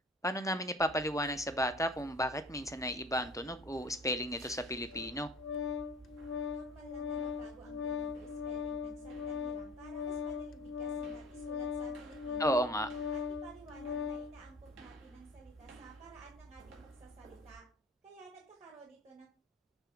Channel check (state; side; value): normal; both; correlation 0.45